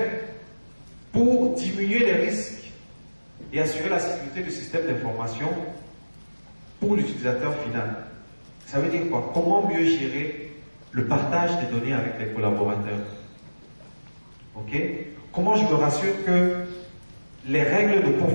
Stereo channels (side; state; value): both; inverted; correlation -1.00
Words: pour diminuer les risques et assurer la sécurité du système d'information pour l'utilisateur final? Ça veut dire quoi? Comment mieux gérer le partage des données avec les collaborateurs? Ok? Comment je me rassure que les règles de